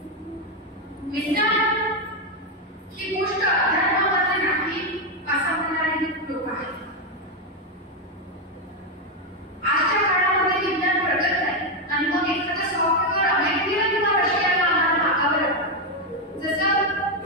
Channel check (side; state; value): both; normal; correlation 0.05